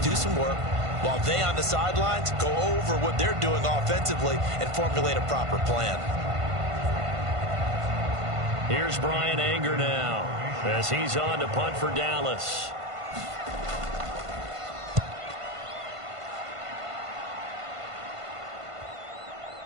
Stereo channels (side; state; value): left; late; 1.5 ms